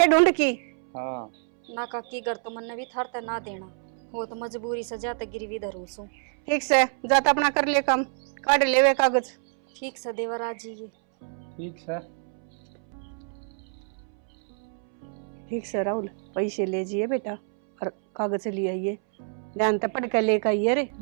ढूंढ की। हाँ ना काकी, घर तो मन भी थारते ना देना हो, तो मजबूरी से जाते गिरवी धरू सू। ठीक से, जाता अपना कर ले काम, काट ले वे कागज। ठीक से देवर आ जाइए। ठीक है। ठीक से राहुल, पैसे ले जाइए बेटा और कागज ले आइए, ध्यान से पढ़ कर लेकर आइए रे।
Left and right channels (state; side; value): silent; left; 60 dB below the other